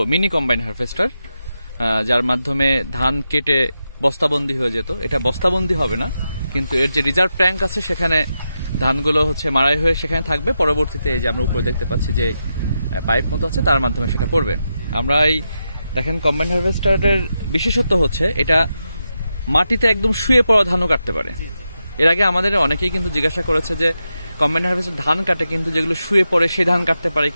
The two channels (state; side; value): inverted; both; correlation -0.87